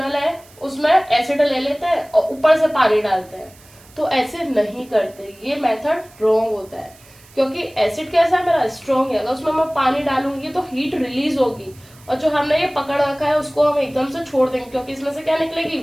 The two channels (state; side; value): noise; right; hiss, 25 dB below the sound